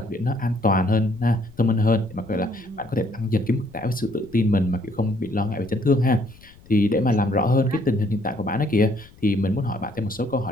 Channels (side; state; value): left; noise; rumble, 24 dB below the sound